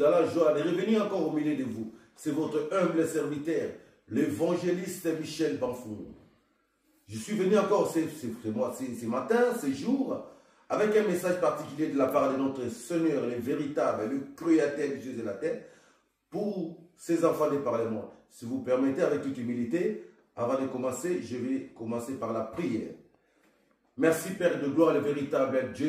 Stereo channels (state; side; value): identical; both; correlation 1.00